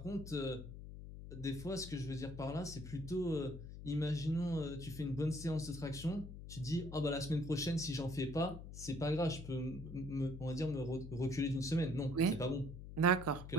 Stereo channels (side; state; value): left; noise; hum, 11 dB below the sound